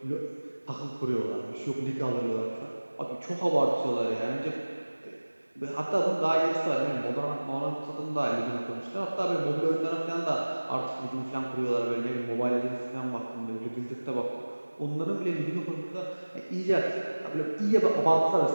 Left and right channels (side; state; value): both; inverted; correlation -1.00